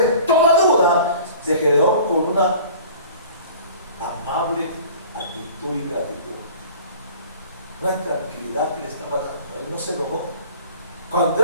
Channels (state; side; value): inverted; both; correlation -0.46